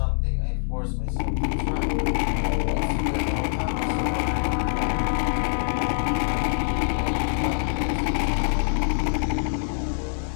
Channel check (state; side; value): silent; right; digital silence